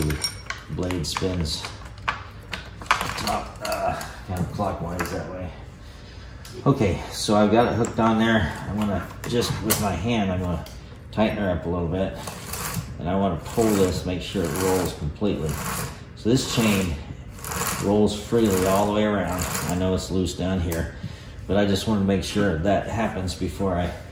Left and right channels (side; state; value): both; identical; correlation 1.00